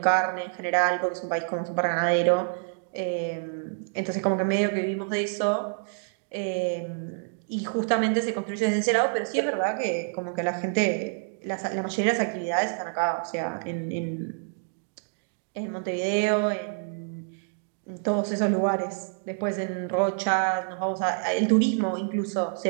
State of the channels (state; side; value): silent; left; 60 dB below the other